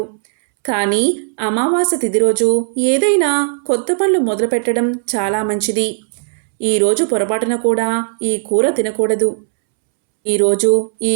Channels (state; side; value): silent; left; 69 dB below the other